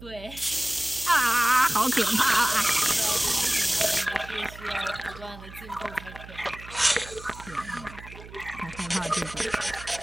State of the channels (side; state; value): right; noise; hum, 16 dB below the sound